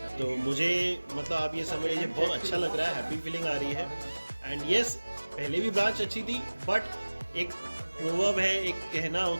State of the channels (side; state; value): both; inverted; correlation -1.00